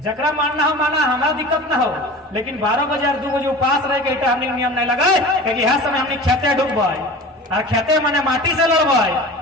मानना हो माना हमारा दिक्कत ना हो, लेकिन 12 बजे और 2 बजे उपास रह के इटा हमने नियम नहीं लगाए क्योंकि यह समय हमने खेते डूबे और खेते मैंने माटी से लड़बे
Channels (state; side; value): normal; both; correlation 0.37